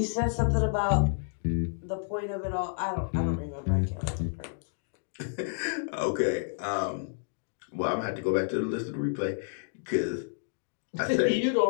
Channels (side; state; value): right; silent; digital silence